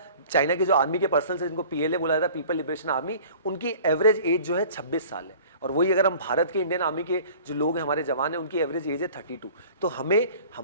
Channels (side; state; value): both; inverted; correlation -0.46